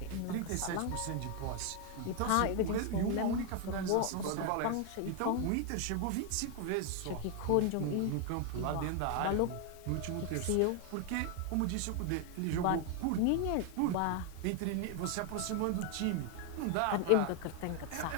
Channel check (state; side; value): different; both; correlation 0.01